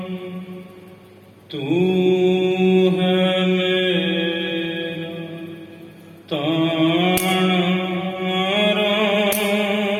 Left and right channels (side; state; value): both; identical; correlation 1.00